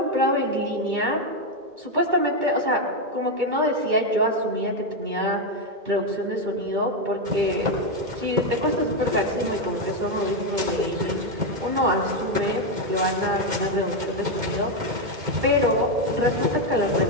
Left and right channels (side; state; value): left; late; 1.9 ms